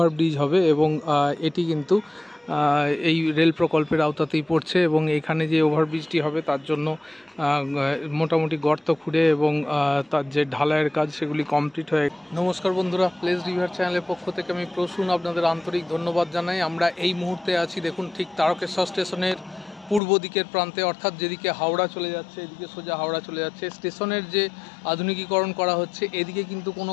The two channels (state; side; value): drops out; right; at 20.0 s